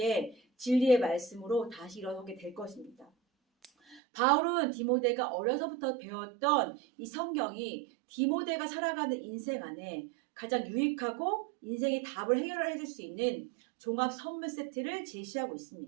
진리의 말씀으로 다시 일어서게 될 것입니다. 바울은 디모데가 어려서부터 배웠던 이 성경이 디모데가 살아가는 인생 안에 가장 유익하고 인생의 답을 해결해 줄 수 있는 종합 선물 세트를 제시하고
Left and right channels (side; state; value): left; drops out; at 4.0 s